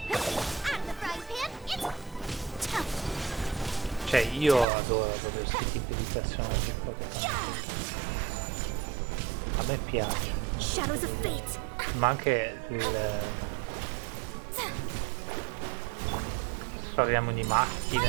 Cioè, io adoro questi tipi di personaggi qua che fanno così. A me piace. Shadows of fate. Ma anche il... Parliamo di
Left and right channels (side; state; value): left; drops out; at 4.7 s